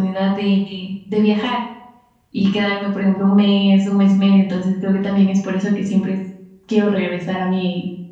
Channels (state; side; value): identical; both; correlation 1.00